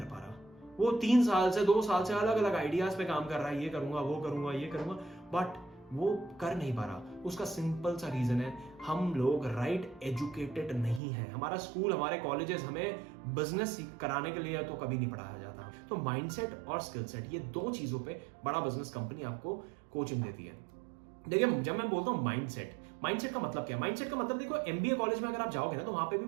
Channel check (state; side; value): drops out; left; at 11.0 s